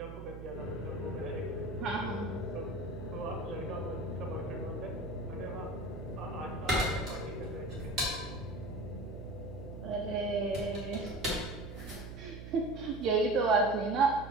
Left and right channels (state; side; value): noise; right; hum, 10 dB below the sound